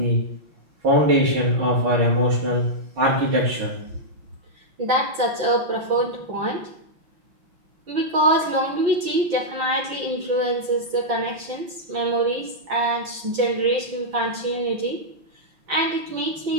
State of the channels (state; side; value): late; left; 5.9 ms